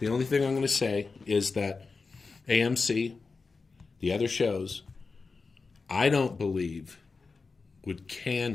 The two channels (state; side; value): quieter; right; 4.4 dB